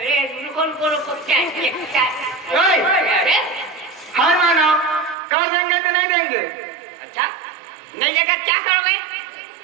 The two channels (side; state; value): left; drops out; at 5.2 s